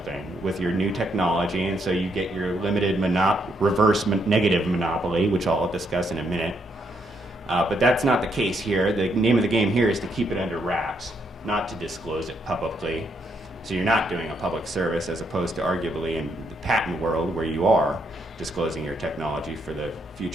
with your new technology, and so you get your limited reverse negative monopoly, which I'll discuss in a minute. But that's not the case here. The name of the game here is to keep it under wraps, not to disclose it publicly. So you're not doing a public service, as opposed to arguably in the patent world, where you are disclosing your technology for the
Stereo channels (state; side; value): normal; both; correlation 0.75